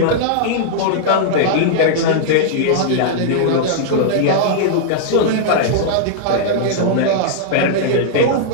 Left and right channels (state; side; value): different; both; correlation -0.01